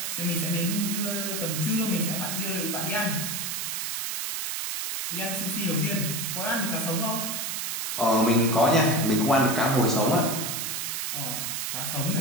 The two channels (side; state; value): right; noise; hiss, 2 dB below the sound